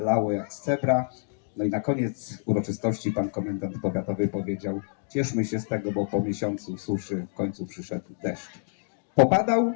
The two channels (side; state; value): right; silent; digital silence